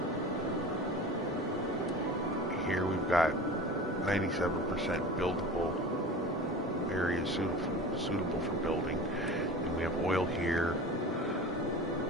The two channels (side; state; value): both; normal; correlation 0.35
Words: Here we've got 97% buildable areas suitable for building. And we have oil here.